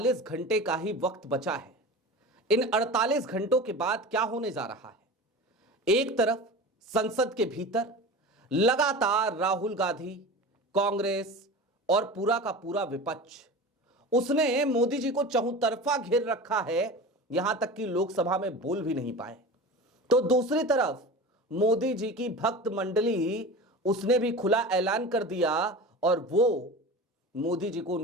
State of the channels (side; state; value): both; normal; correlation 0.32